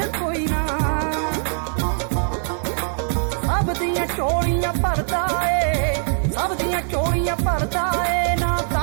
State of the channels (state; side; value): silent; left; 58 dB below the other